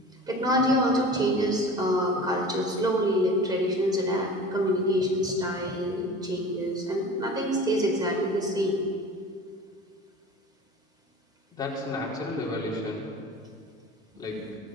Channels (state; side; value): normal; both; correlation 0.39